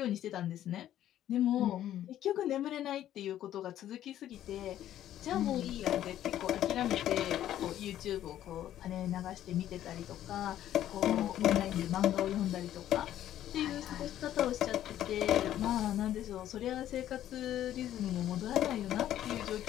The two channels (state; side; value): quieter; right; 12.0 dB